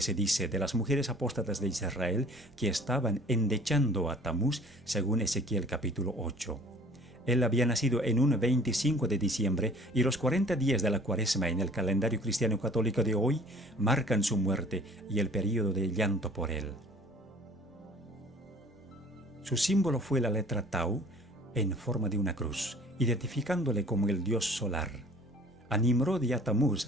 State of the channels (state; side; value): normal; both; correlation 0.50